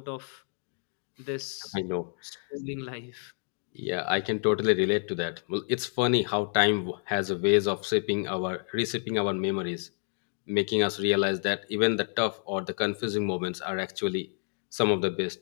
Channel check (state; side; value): silent; right; 55 dB below the other